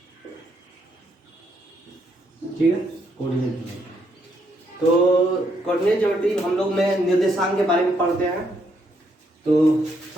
ठीक है, कोऑर्डिनेट ज्योमेट्री। तो कोऑर्डिनेट ज्योमेट्री हम लोग में निर्देशांक के बारे में पढ़ते हैं। तो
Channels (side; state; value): both; normal; correlation 0.75